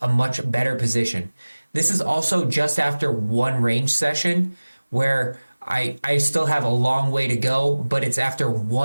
a much better position. This is also just after one range session where I still have a long way to go, but it's after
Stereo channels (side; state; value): both; inverted; correlation -1.00